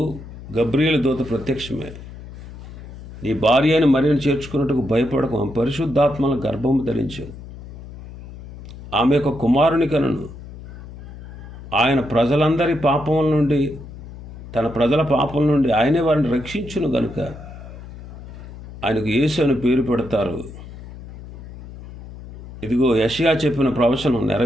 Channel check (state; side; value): noise; left; hum, 14 dB below the sound